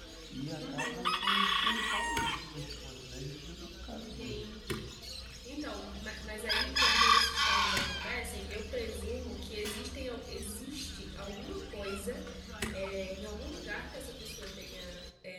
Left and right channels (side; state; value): both; identical; correlation 1.00